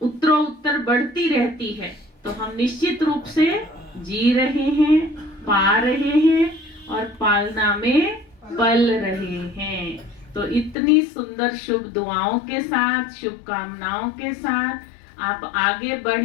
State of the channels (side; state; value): right; drops out; at 10.8 s